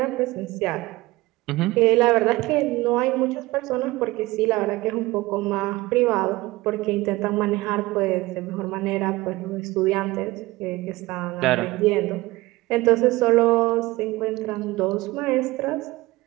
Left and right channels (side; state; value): left; quieter; 19.9 dB